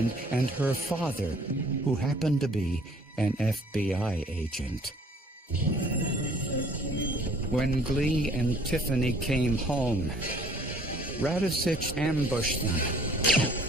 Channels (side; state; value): both; normal; correlation 0.56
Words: and her father, who happened to be an FBI agent. When Glee and Tiffany came home, Radovsich ambushed them.